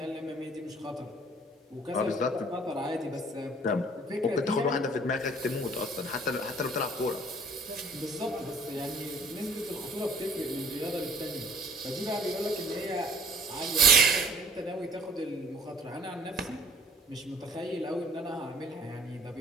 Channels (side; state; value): both; normal; correlation 0.53